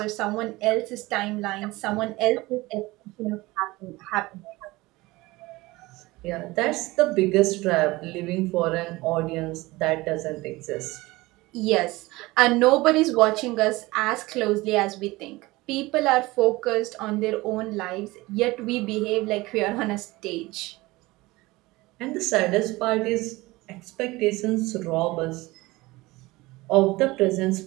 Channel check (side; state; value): left; quieter; 20.8 dB